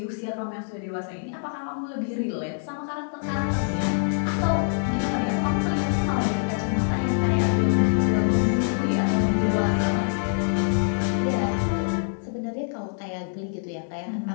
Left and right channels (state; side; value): silent; right; 62 dB below the other